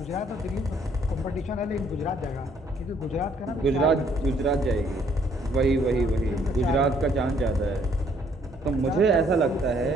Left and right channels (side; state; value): both; normal; correlation 0.65